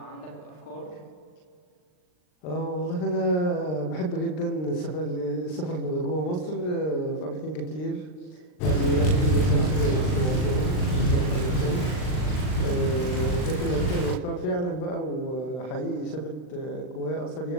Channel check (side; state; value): right; late; 39 ms